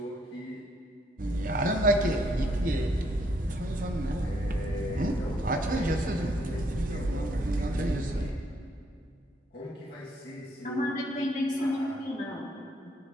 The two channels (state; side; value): normal; both; correlation 0.71